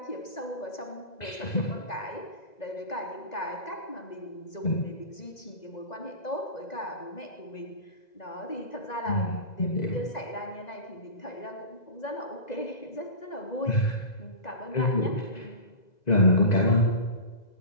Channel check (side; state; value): right; late; 2.0 ms